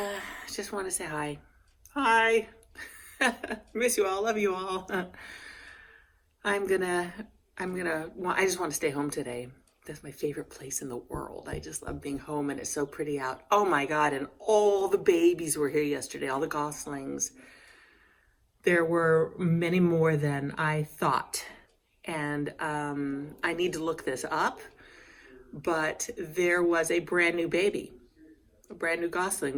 just want to say hi. Hi. Miss you all, love you all. I just want to stay home today. That's my favorite place in the world. I just love being home and it's so pretty out. Oh my God, and all the babies were here yesterday, all the goslings. There were many more than I thought. And I need to look this up, but there was a brand new baby a brand new Gosling,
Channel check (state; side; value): identical; both; correlation 1.00